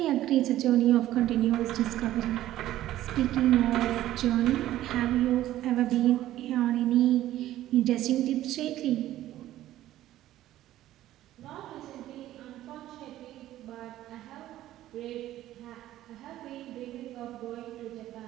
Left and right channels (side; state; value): left; quieter; 13.9 dB